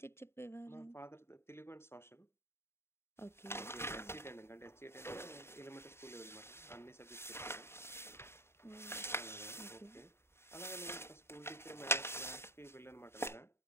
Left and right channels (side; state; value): right; late; 0.12 ms